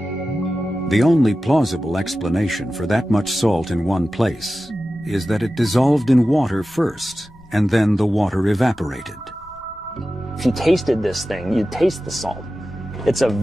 The only plausible explanation for that much salt in one place is that it dissolved in water first, and then the water evaporated. If you tasted this thing, you'd taste the salt. It's a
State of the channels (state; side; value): noise; left; rumble, 25 dB below the sound